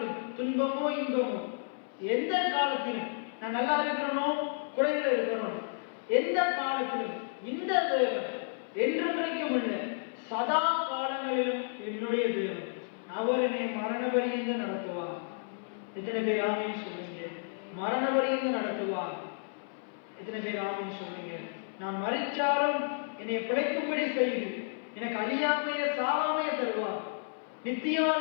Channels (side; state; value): right; silent; 57 dB below the other